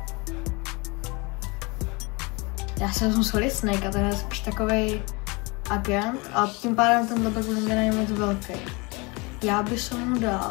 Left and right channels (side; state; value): right; quieter; 27.3 dB